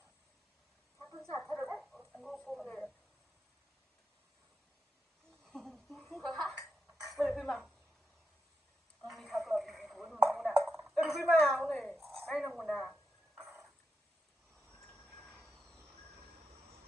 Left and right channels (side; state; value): both; normal; correlation 0.87